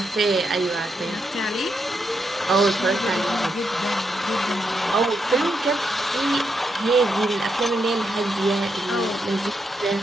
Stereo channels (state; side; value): normal; both; correlation 0.82